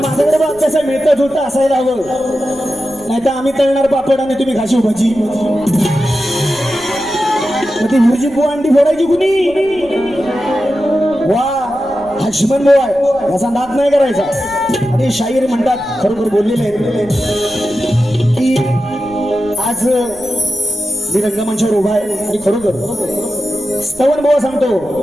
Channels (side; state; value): right; noise; rumble, 23 dB below the sound